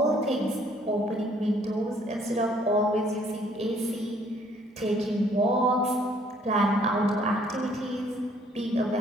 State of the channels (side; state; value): both; normal; correlation 0.62